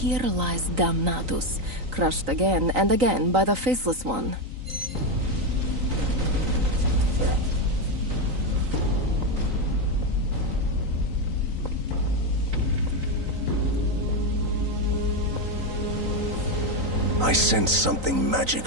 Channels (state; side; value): late; left; 3.9 ms